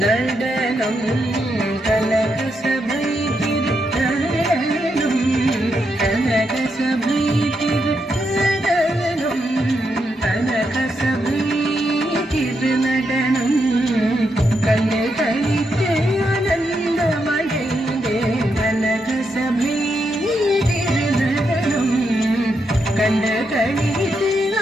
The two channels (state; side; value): normal; both; correlation 0.82